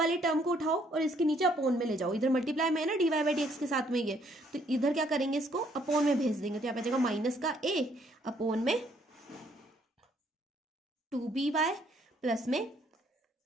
टर्म को उठाओ और इसके नीचे अपोन में ले जाओ, इधर मल्टीप्लाई में है ना dy बाई डी एक्स के साथ में ये, तो इधर क्या करेंगे, इसको अपोन में भेज देंगे, तो यहाँ पे आ जाएगा माइनस का a अपोन में 2by प्लस में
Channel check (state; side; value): normal; both; correlation 0.67